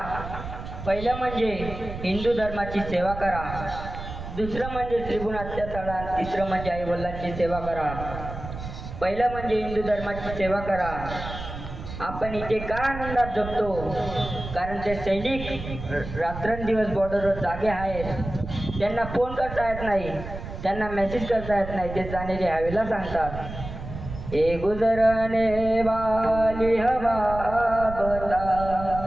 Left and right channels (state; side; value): noise; right; rumble, 9 dB below the sound